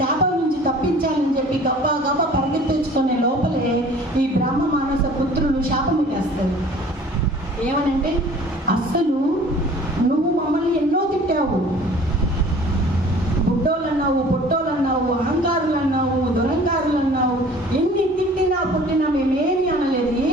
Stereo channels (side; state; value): both; normal; correlation 0.49